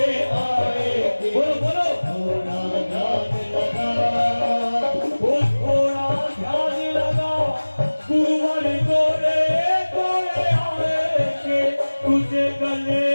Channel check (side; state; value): both; inverted; correlation -1.00